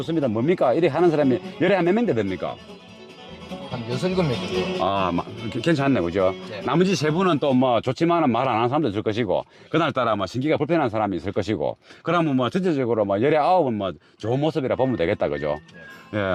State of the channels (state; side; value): identical; both; correlation 1.00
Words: 뭡니까? 이렇게 하는 사람이 열에 한 몇 명 됩니까? 한 6, 7명 정도. 아, 괜찮네, 그죠? 네. 나머지 세 분은 또 뭐 좋지만은 말 안 하는 사람도 있을 것이고, 그날따라 뭐 신기가 불편한 사람이 있을 것이고, 그러면 뭐 전체적으로 뭐 열에 9은 뭐 좋은 모습이라 보면 되겠다, 그죠? 예,